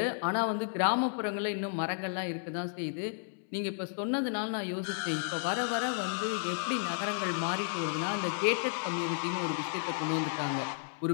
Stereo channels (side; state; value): right; silent; 56 dB below the other